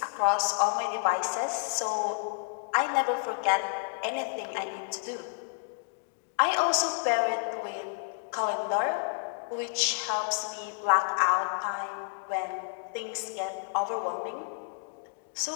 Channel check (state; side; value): silent; right; digital silence